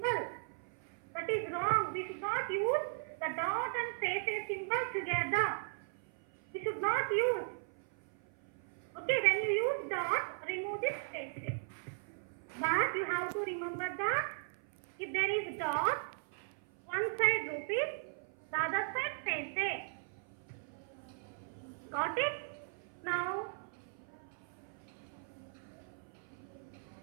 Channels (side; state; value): left; silent; 53 dB below the other